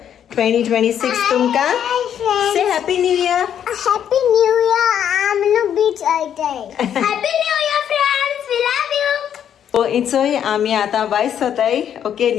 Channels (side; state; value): right; quieter; 9.3 dB